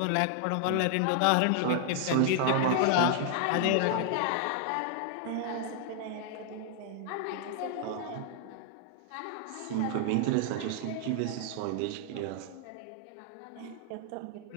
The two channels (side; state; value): both; different; correlation 0.00